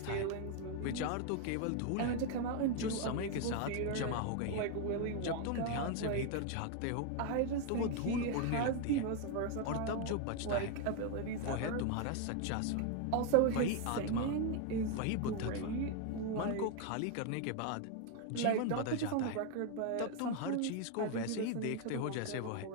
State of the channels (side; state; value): both; different; correlation 0.01